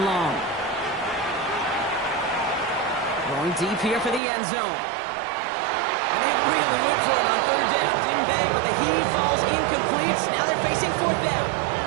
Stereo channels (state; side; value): drops out; left; at 4.2 s